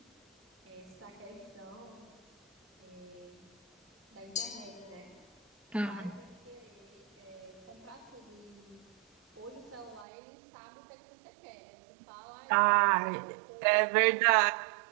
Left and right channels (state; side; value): drops out; left; at 10.1 s